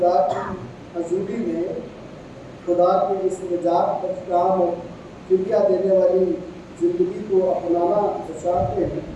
کی حضوری میں خدا کے اس نجات بخش اور فدیہ دینے والی زندگی کو اپنانا چاہتے ہیں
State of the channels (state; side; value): identical; both; correlation 1.00